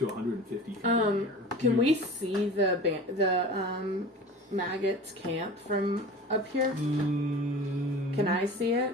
150 feet in the air. Can we see the maggots camp from up here? Can I see it?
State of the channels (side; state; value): both; normal; correlation 0.37